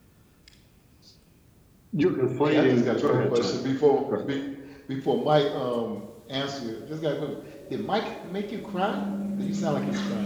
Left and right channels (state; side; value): identical; both; correlation 1.00